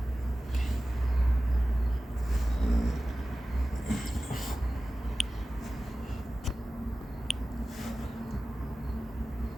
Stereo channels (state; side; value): normal; both; correlation 0.96